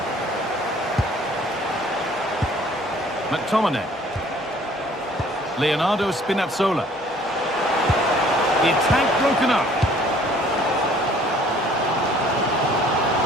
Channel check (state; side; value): normal; both; correlation 0.56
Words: McTominay. Leonardo Spinazzola. The attack broken up.